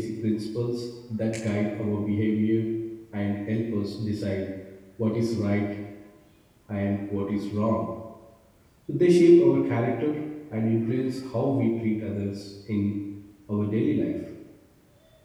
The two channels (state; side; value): identical; both; correlation 1.00